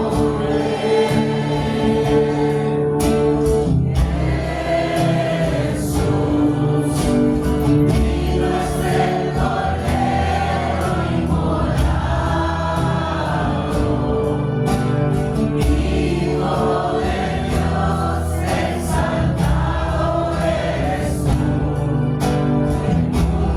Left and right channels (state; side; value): identical; both; correlation 1.00